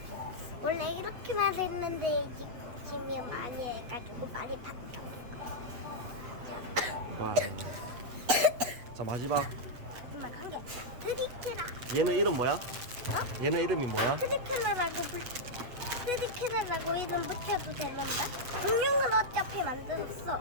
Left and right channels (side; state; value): left; late; 8.2 ms